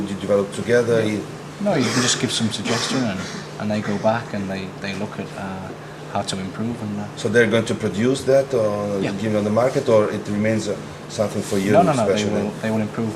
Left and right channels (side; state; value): both; identical; correlation 1.00